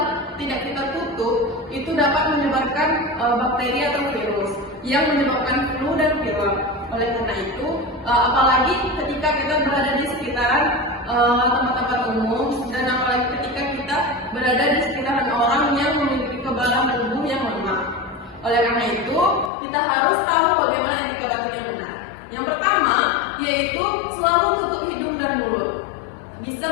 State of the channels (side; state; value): right; drops out; at 19.5 s